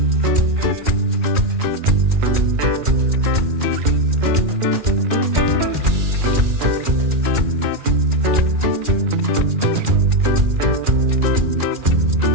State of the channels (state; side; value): late; left; 2.4 ms